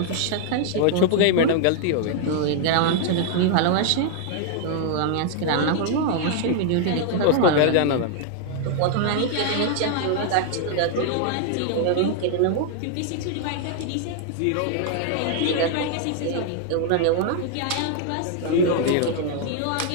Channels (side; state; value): both; different; correlation 0.00